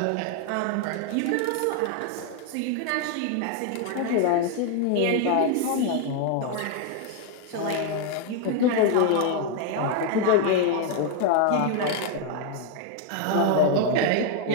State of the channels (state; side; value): different; both; correlation 0.00